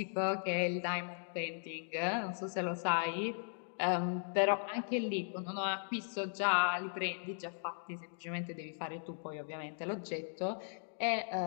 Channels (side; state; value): right; silent; digital silence